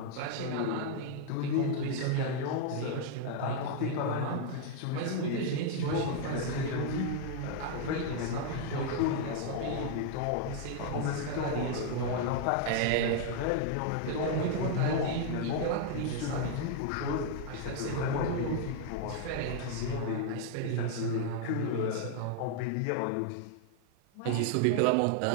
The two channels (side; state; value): both; different; correlation 0.00